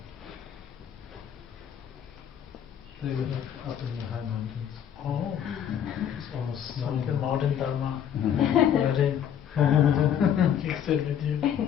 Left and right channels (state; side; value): quieter; right; 9.2 dB